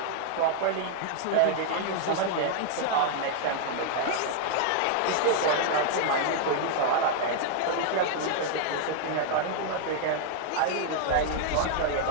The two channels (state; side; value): different; both; correlation 0.00